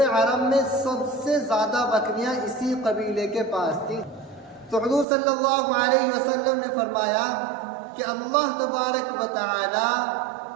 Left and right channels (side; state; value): left; drops out; at 5.1 s